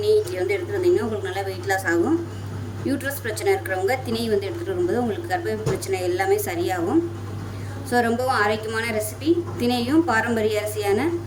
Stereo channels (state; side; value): identical; both; correlation 1.00